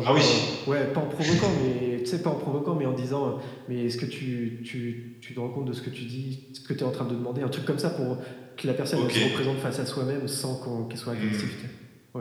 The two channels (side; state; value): both; identical; correlation 1.00